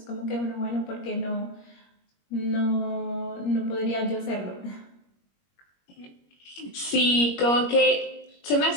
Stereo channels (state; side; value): late; right; 21 ms